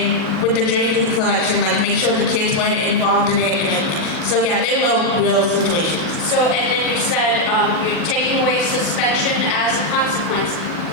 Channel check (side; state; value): both; normal; correlation 0.01